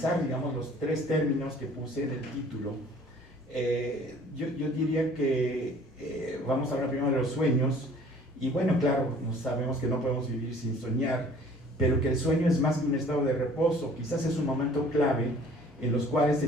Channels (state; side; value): normal; both; correlation 0.52